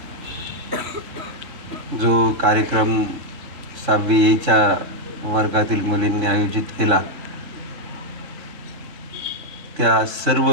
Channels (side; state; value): left; late; 3.7 ms